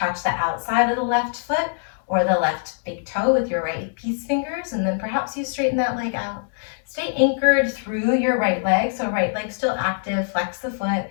the outside of the left foot or the left big toe with your right peace fingers, and then perhaps you straighten that leg out. Stay anchored through your right leg, so right leg still active, flex the foot,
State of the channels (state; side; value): silent; right; digital silence